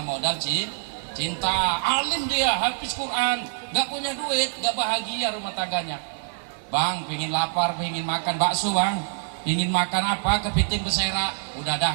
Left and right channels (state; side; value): silent; left; 62 dB below the other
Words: cinta. Alim dia, habis Quran, gak punya duit, gak bahagia rumah tangganya. Bang, pingin lapar, pingin makan bakso bang, pingin makan apa, kepiting bersera, udah dah